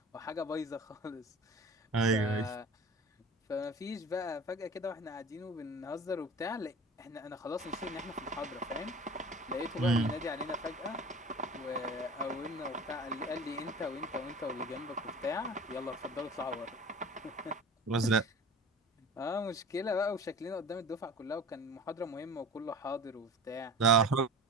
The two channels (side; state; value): both; normal; correlation 0.39